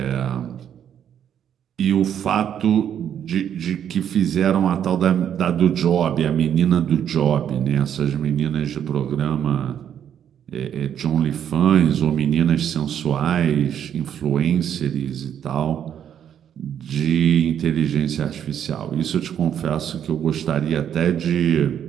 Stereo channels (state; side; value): quieter; left; 9.3 dB